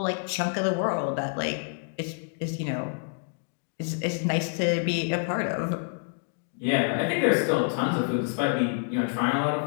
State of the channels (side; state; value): right; silent; 60 dB below the other